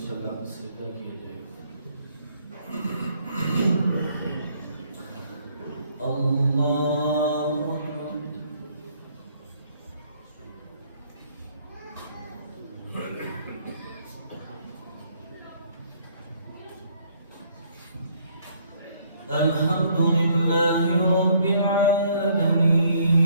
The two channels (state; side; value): inverted; both; correlation -0.65